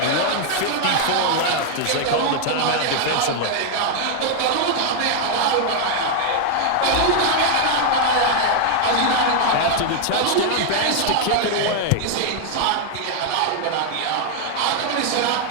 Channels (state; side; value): different; both; correlation 0.00